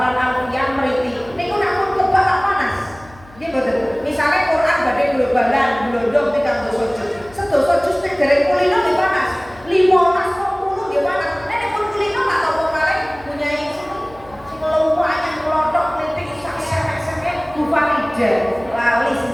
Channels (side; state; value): left; noise; hum, 23 dB below the sound